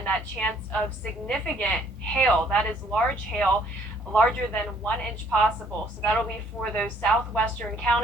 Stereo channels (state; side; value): normal; both; correlation 0.63